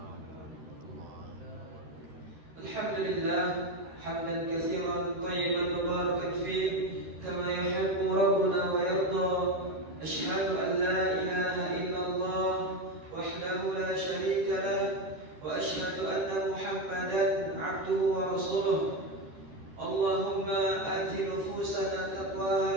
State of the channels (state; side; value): late; left; 13 ms